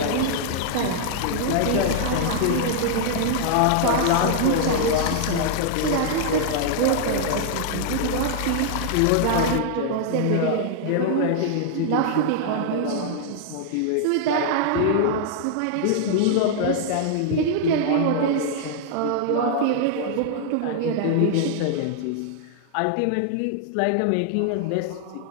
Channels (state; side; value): different; both; correlation -0.01